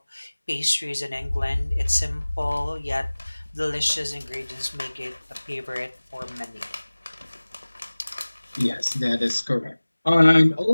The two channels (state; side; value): inverted; both; correlation -1.00